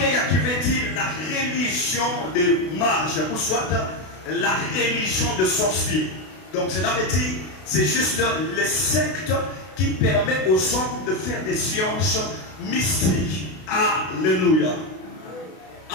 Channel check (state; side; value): late; right; 32 ms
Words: qui veut dire la religion des mages, ou soit la religion de sorciers. Donc cela veut dire, c'est juste les sectes qui permettent aux hommes de faire des sciences mystiques. Alléluia.